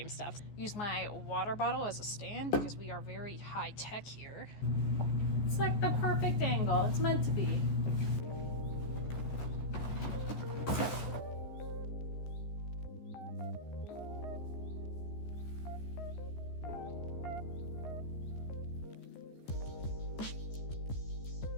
stuff. Use my water bottle as a stand because we are very high tech here. It's like the perfect angle. It's meant to be.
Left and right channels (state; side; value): late; right; 14 ms